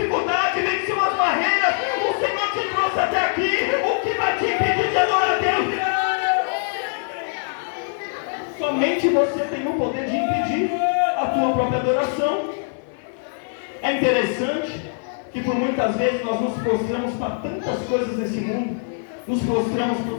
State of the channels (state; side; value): silent; right; digital silence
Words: venceu as barreiras, o Senhor te trouxe até aqui. O que vai te impedir de adorar a Deus? Somente você tem o poder de impedir a tua própria adoração. É interessante que por muitas vezes nós nos prostramos para tantas coisas nesse mundo. Nos prostramos para